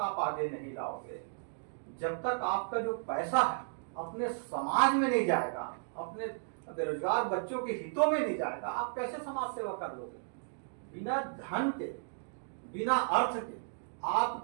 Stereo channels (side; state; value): left; silent; digital silence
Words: आगे नहीं लाओगे, जब तक आपका जो पैसा है अपने समाज में नहीं जाएगा, अपने बेरोजगार बच्चों के हितों में नहीं जाएगा, आप कैसे समाज सेवा कर लोगे? बिना धन के, बिना अर्थ के